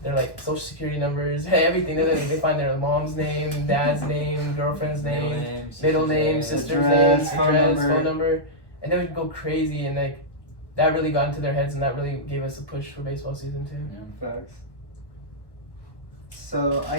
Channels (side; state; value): right; late; 1.1 ms